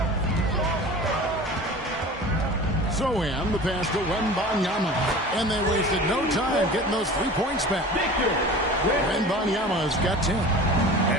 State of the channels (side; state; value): both; normal; correlation 0.38